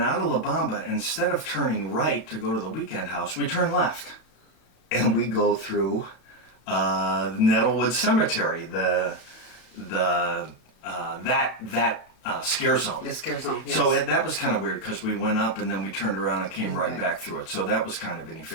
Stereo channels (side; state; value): right; late; 34 ms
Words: out of La Bamba. Instead of turning right to go to the Weekend House, we turn left. And we go through Nettlewood Cemetery, that scare zone. The scare zone, yes. So that was kind of weird, because we went up and then we turned around and came right back through it. So that was kind of